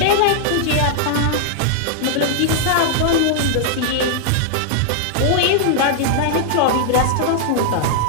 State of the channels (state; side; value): different; both; correlation -0.01